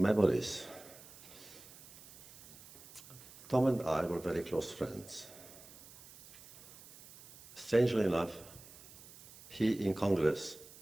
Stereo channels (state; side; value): noise; right; hiss, 19 dB below the sound